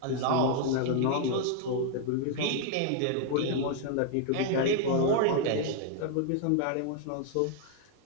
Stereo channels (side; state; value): both; different; correlation 0.00